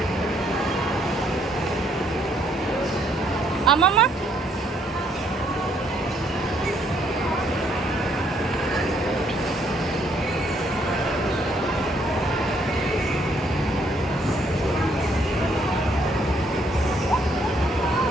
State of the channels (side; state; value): both; normal; correlation 0.68